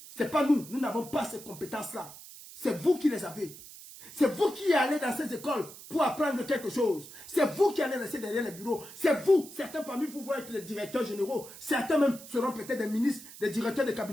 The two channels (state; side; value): noise; right; hiss, 16 dB below the sound